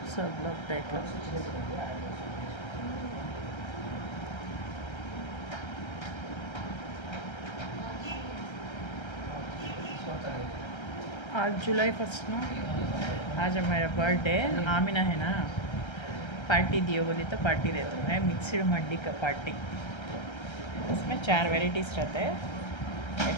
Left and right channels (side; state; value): right; late; 1.3 ms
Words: सब लोग देख लो। आज जुलाई 1 ना, आज मेरा बर्थडे। आमिना है ना, पार्टी दियो बोली तो पार्टी देता हूँ। मैं मिक्सड मंडी का पार्टी, उसमें 4 वेराइटीज़ रहते हैं।